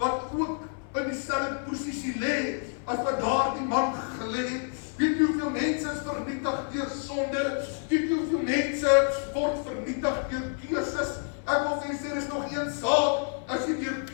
ook in dieselfde posisie lê, as wat daardie man gelê het. Weet jy hoeveel mense is vernietig deur sonde? Weet jy hoeveel mense word vernietig deur keuses? Ek wil vir u sê, is nog een saak, as jy deur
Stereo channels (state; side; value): silent; right; 56 dB below the other